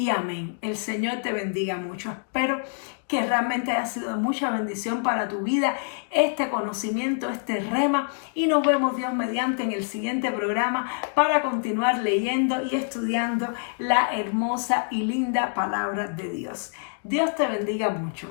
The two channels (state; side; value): silent; right; 61 dB below the other